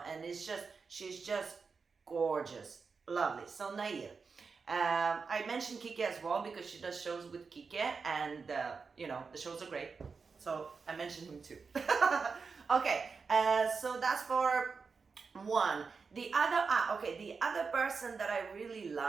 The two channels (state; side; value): quieter; left; 5.0 dB